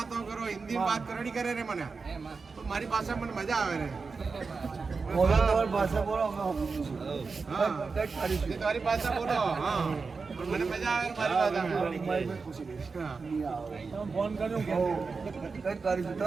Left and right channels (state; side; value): quieter; left; 4.6 dB